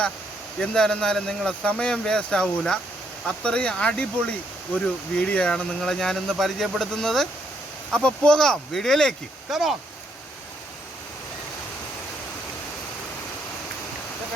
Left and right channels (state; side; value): normal; both; correlation 0.73